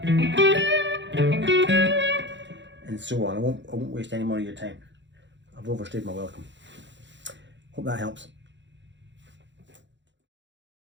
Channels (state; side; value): late; left; 0.53 ms